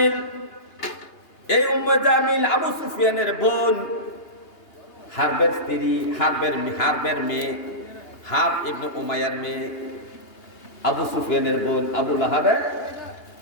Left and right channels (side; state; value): right; late; 2.9 ms